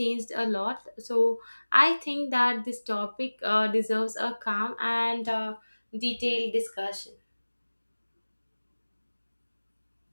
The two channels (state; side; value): inverted; both; correlation -1.00